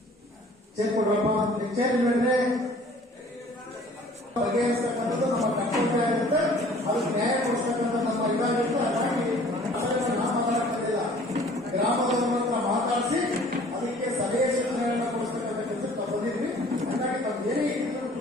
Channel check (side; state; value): both; normal; correlation 0.52